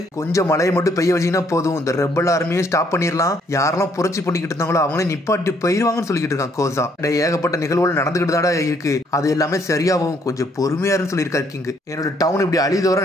கொஞ்சம் மழையை மட்டும் பெய்ய வச்சீங்கன்னா போதும், இந்த ரெபல் ஆர்மியை ஸ்டாப் பண்ணிடலாம், யாரெல்லாம் புரட்சி பண்ணிக்கிட்டு இருந்தாங்களோ அவங்களே நிப்பாட்டி போயிருவாங்கன்னு சொல்லிக்கிட்டு இருக்கான் கோசா. ஏகப்பட்ட நிகழ்வுகள் நடந்துகிட்டு தாடா இருக்கு, அது எல்லாமே சரியாகும், கொஞ்சம் பொறுமையாருன்னு சொல்லியிருக்காரு கிங்கு. என்னோட டவுன் இப்படி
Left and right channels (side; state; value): both; normal; correlation 0.67